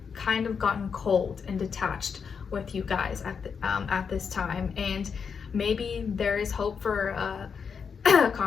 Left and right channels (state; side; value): quieter; right; 6.2 dB